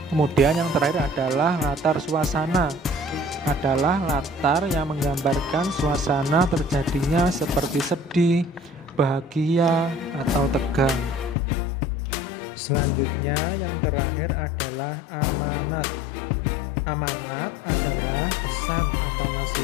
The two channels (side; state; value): right; drops out; at 11.4 s